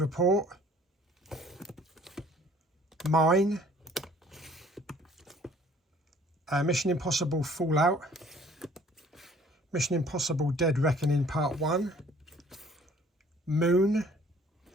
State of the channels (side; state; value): both; normal; correlation 0.56